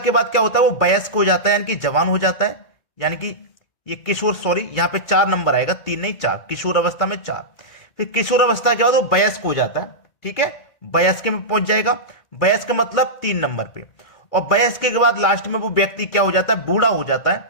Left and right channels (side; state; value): right; late; 2.2 ms